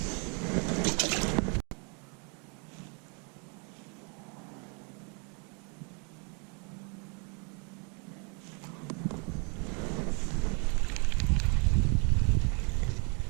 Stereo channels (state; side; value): quieter; left; 35.7 dB